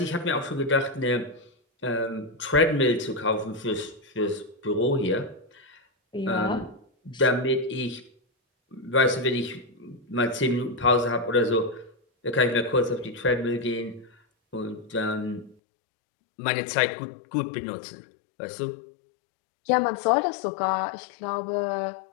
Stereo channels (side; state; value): right; drops out; at 15.6 s